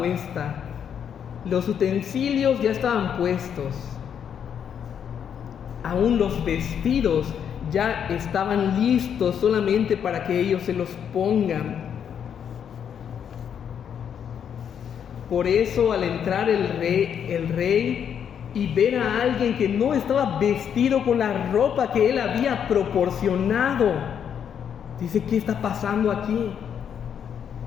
los utensilios ya estaban puestos. Aún los vestidos ya estaban listos solamente para que ellos se los pongan. Por eso al entrar el rey y ver a alguien que no estaba vestido con la ropa que él había proporcionado, dice: ¿qué está pasando aquí?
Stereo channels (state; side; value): quieter; right; 8.3 dB